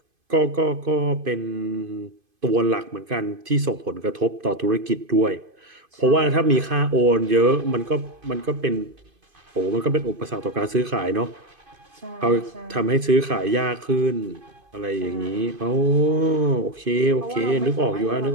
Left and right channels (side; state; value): left; late; 2.5 ms